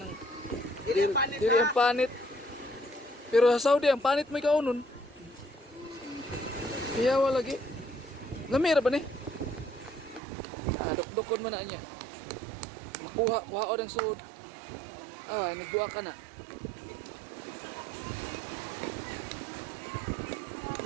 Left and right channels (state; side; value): drops out; left; at 10.2 s